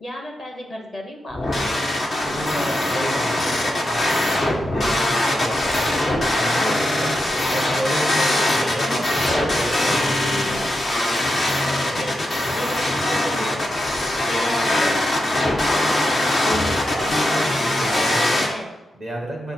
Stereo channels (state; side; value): normal; both; correlation 0.87